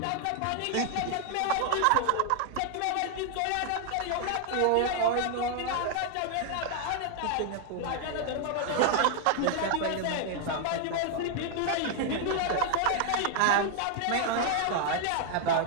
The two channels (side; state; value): both; different; correlation 0.00